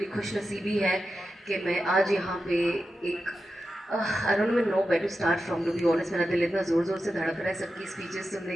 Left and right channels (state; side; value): normal; both; correlation 0.91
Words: खुशनसीबी है कि मैं आज यहाँ पे एक I don't know where to start from, to be honest. मेरा दिल इतना ज़ोर ज़ोर से धड़क रहा है सबकी स्पीचेस